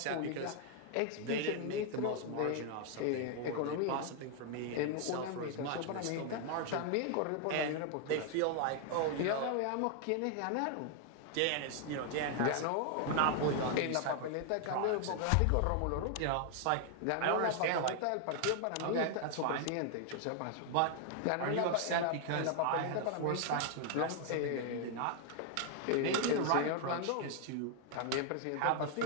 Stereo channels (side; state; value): both; different; correlation 0.00